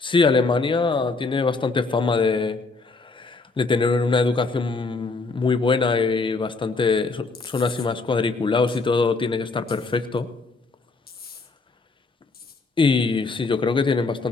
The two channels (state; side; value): quieter; right; 3.8 dB